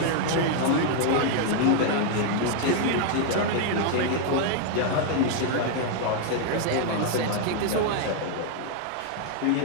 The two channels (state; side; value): different; both; correlation 0.00